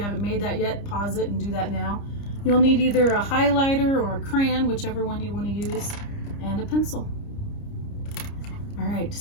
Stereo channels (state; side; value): late; right; 30 ms